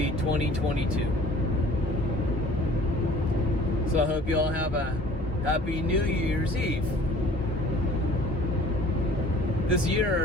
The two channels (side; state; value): both; normal; correlation 0.50